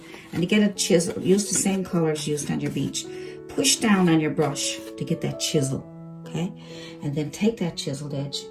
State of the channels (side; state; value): both; identical; correlation 1.00